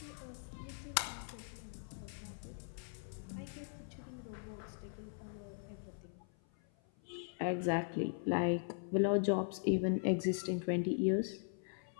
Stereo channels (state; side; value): silent; right; 51 dB below the other